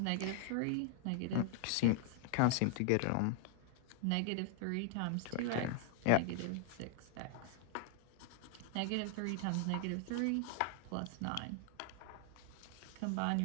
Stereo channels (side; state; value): both; different; correlation 0.00